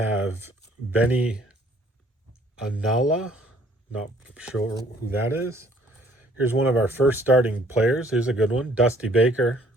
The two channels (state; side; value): normal; both; correlation 0.60